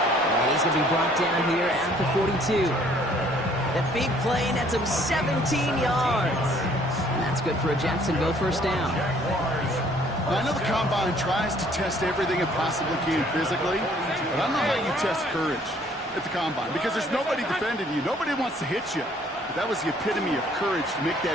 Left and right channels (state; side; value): normal; both; correlation 0.60